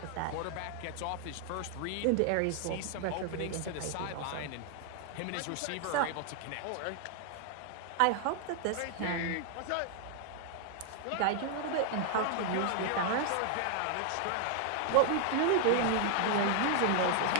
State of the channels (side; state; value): both; different; correlation 0.00